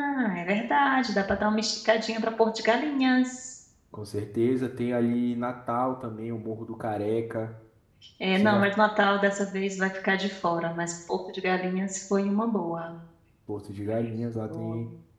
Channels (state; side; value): identical; both; correlation 1.00